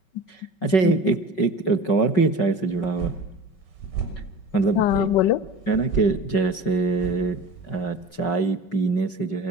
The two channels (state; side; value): late; right; 5.3 ms